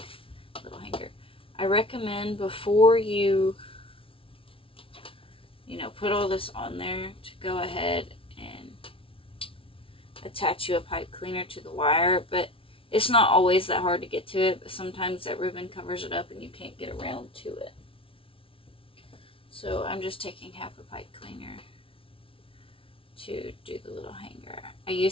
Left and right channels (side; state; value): right; late; 0.26 ms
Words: a little hanger. I recommend before you put all this on there to go ahead and attach you a pipe cleaner to the wire, but it's not always that hard to get to it, but sometimes that ribbon covers it up and you can't get around to it. So I'm just taking half a pipe cleaner to do the little hanger. I